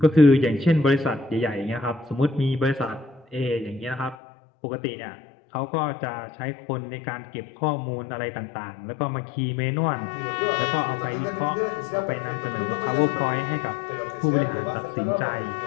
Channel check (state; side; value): drops out; right; at 4.2 s